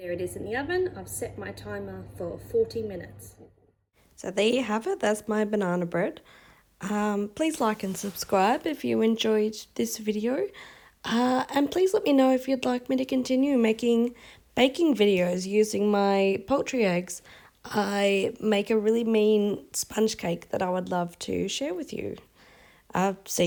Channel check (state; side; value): identical; both; correlation 1.00